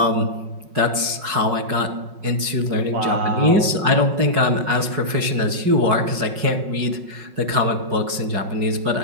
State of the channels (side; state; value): left; late; 5.4 ms